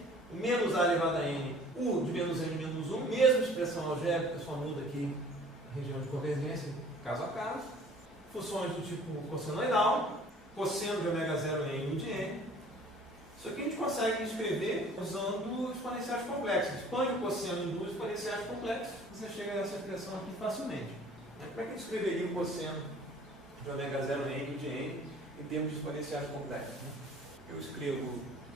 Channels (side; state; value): both; normal; correlation 0.51